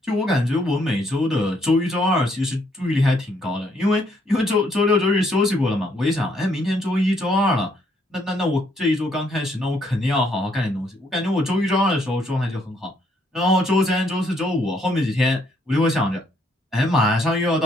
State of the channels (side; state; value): both; normal; correlation 0.70